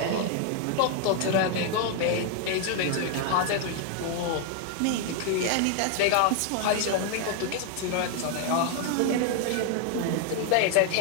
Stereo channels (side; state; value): both; different; correlation 0.00